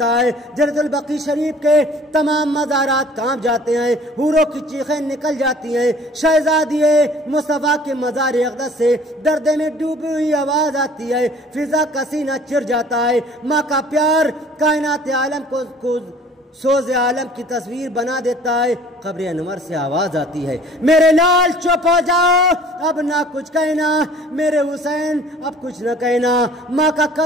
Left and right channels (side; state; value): both; normal; correlation 0.51